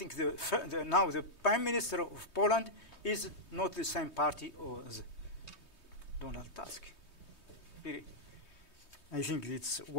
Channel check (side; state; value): right; late; 3.2 ms